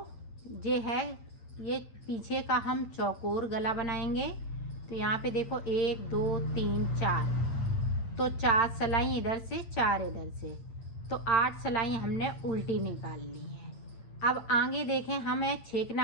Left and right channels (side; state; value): right; late; 8.9 ms